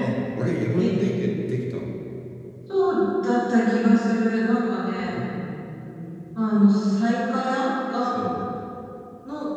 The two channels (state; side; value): identical; both; correlation 1.00